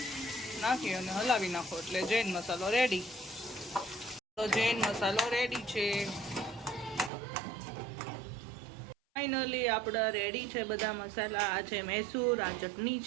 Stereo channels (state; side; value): drops out; left; at 7.1 s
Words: નાખી અને હલાવી નાખો એટલે જૈન મસાલો રેડી. તો જૈન મસાલો રેડી છે. ફાઇનલી આપણા રેડી છે બધા મસાલા. આ છે મૈસૂર, આ ચટણી